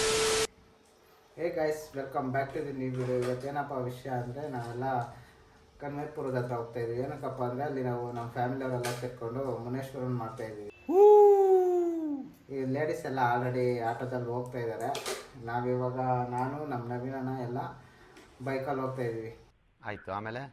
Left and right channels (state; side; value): identical; both; correlation 1.00